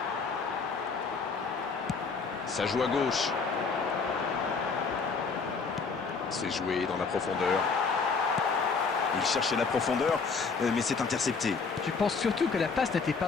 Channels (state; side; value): quieter; right; 4.9 dB